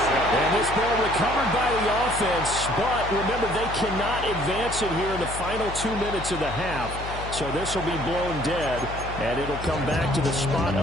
And this ball recovered by the offense, but remember, they cannot advance it here in the final 2 minutes of the half. So this will be blown dead, and it'll come back to the spot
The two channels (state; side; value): noise; left; hum, 9 dB below the sound